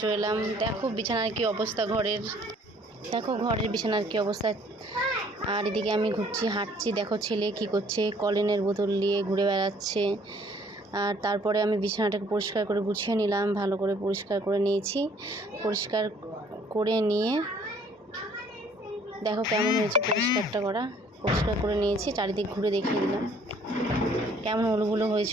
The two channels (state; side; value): normal; both; correlation 0.59